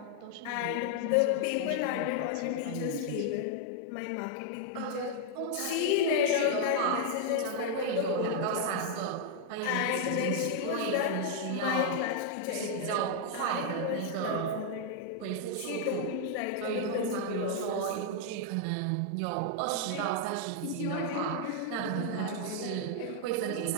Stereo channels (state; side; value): different; both; correlation 0.00